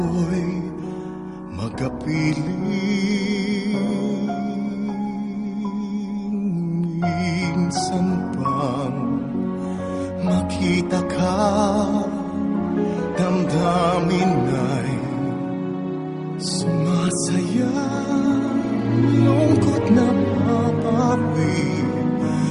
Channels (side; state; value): both; identical; correlation 1.00